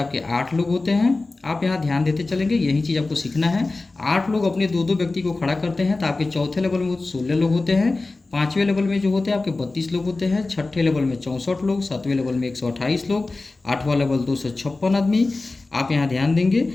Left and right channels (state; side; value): quieter; right; 3.4 dB